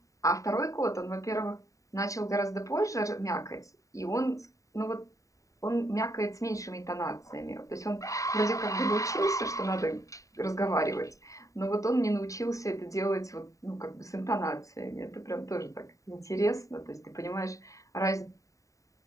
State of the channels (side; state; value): right; late; 0.16 ms